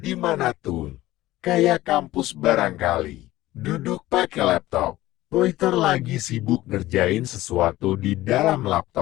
mana tuh. Kayak kampus barangkali. Duduk pakai laptop. Poiter lagi sibuk ngerjain sesuatu di dalam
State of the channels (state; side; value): quieter; right; 16.6 dB